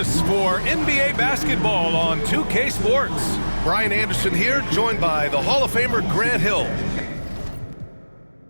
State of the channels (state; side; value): inverted; both; correlation -1.00